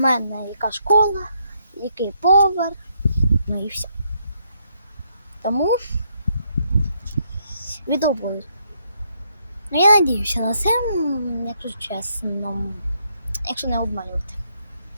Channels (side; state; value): both; inverted; correlation -0.74